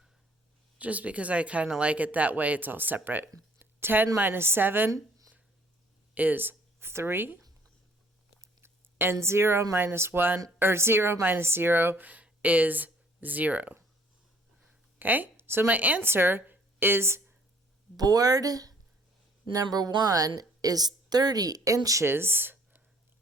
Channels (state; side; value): normal; both; correlation 0.58